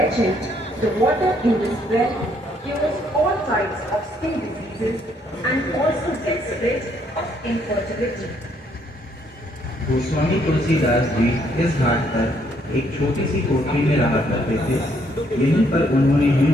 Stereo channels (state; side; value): normal; both; correlation 0.69